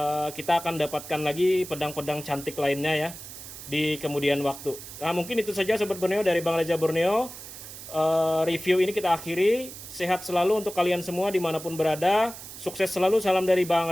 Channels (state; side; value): noise; right; hiss, 13 dB below the sound